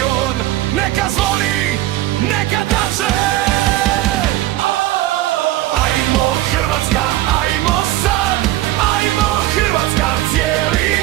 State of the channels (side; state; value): left; quieter; 15.6 dB